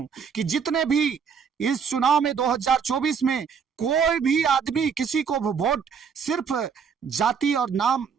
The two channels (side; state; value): left; quieter; 6.5 dB